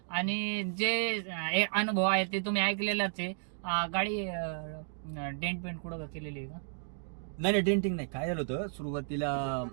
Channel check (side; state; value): left; silent; digital silence